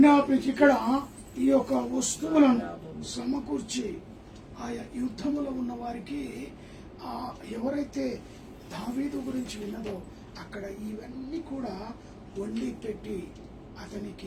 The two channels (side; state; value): both; identical; correlation 1.00